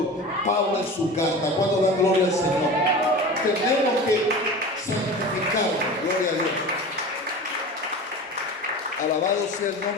Pablo en su carta. Cuando da gloria al Señor, tenemos que santificarnos. Gloria a Dios. Alabado sea el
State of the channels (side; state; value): both; normal; correlation 0.34